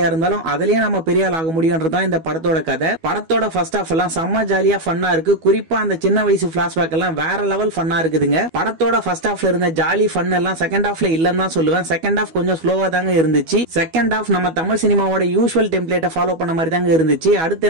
இருந்தாலும் அதுலயே நம்ம பெரிய ஆள் ஆக முடியும்ன்றதுதான் இந்த படத்தோட கதை. படத்தோட ஃபர்ஸ்ட் ஹாஃப் எல்லாம் செம்ம ஜாலியா ஃபன்னா இருக்கு. குறிப்பா அந்த சின்ன வயசு பிளாஷ்பேக் எல்லாம் வேற லெவல் ஃபன்னா இருக்குதுங்க. படத்தோட ஃபர்ஸ்ட் ஹாஃப்ல இருந்த ஜாலி ஃபன் எல்லாம் செகண்ட் ஹாஃப்ல இல்லன்னு தான் சொல்லுவேன். செகண்ட் ஹாஃப் கொஞ்சம் ஸ்லோவா தாங்க இருந்துச்சு. செகண்ட் ஹாஃப் நம்ம தமிழ் சினிமாவோட யூசுவல் டெம்ப்ளேட்டை ஃபாலோ பண்ண மாதிரி தாங்க இருந்துச்சு. அடுத்த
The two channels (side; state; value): left; late; 12 ms